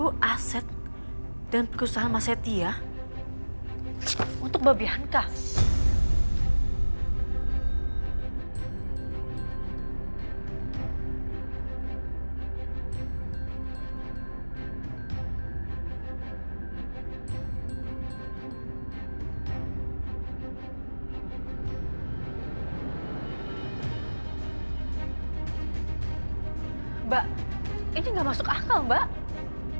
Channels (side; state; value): both; inverted; correlation -1.00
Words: aset dan perusahaan Mas Setia untuk Mbak Bianca. Mbak, ini nggak masuk akal, Mbak.